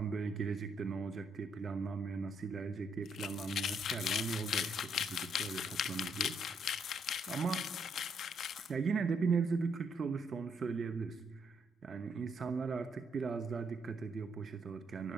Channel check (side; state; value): both; normal; correlation 0.74